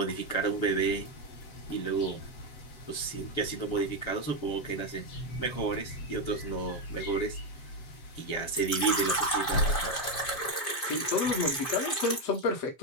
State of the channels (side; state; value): right; late; 7.5 ms